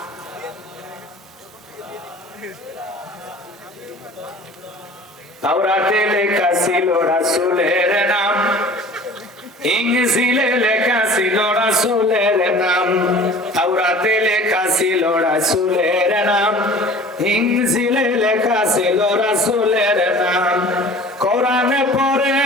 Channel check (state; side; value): normal; both; correlation 0.44